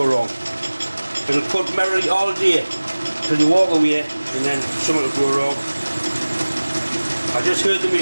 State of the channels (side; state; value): both; inverted; correlation -1.00